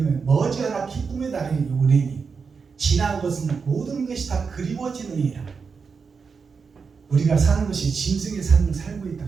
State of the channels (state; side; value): quieter; left; 5.4 dB